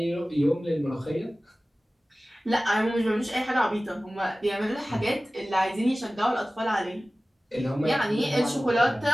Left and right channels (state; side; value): normal; both; correlation 0.97